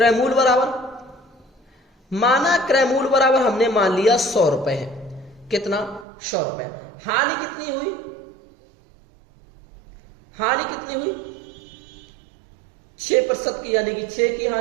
मूल्य बराबर हमने मान लिया 100 रुपए है, कितना 100 रुपए। हानि कितनी हुई, 6% की, यानी कि 6 की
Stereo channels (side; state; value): left; drops out; at 6.1 s